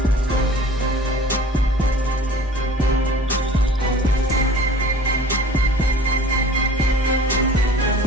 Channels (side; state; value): both; normal; correlation 0.46